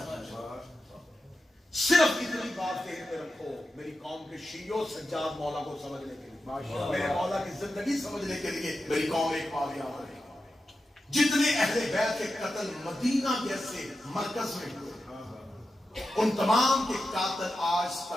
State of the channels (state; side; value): normal; both; correlation 0.90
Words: صرف اتنی بات ذہن میں رکھو میری قوم کے شیعوں سجاد مولا کو سمجھنے کے لیے، میرے مولا کی زندگی سمجھنے کے لیے میری قوم ایک پا گیا ہے۔ جتنے اہل بیت کے قتل مدینہ جیسے مرکز میں ہوئے، ان تمام کے قاتل آج